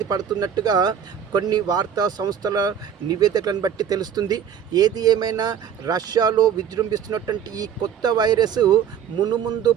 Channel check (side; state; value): left; quieter; 8.4 dB